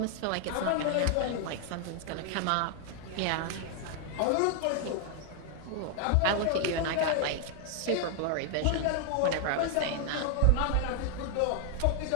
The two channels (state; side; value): different; both; correlation 0.00